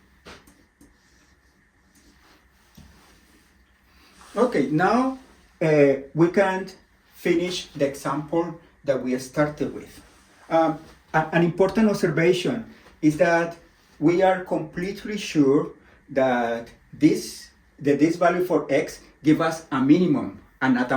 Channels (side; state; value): both; identical; correlation 1.00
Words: Okay, now we can finish the example that we started with. An important observation is that we are completely sure that this value for x gives us a minimum and not